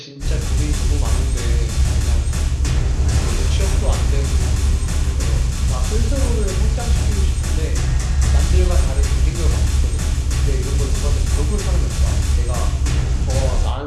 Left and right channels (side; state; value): both; identical; correlation 1.00